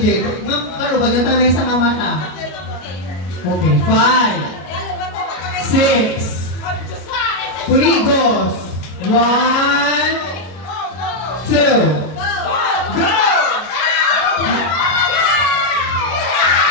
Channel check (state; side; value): late; right; 33 ms